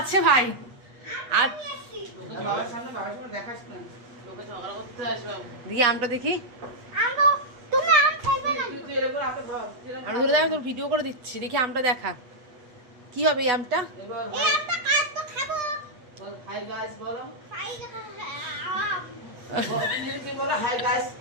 ভাই আর দেখি আমটা দেখি আমি ধরে দেখা তোর ভিডিও করে দিচ্ছি দেখি আমটা দেখা কি হবে এই আমটা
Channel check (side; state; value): left; late; 8.3 ms